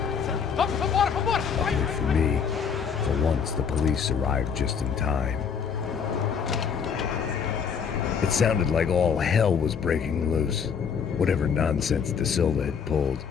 And for me, for once the police arrived just in time. It sounded like all hell was breaking loose. Whatever nonsense De Silva had pulled,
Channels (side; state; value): right; quieter; 6.7 dB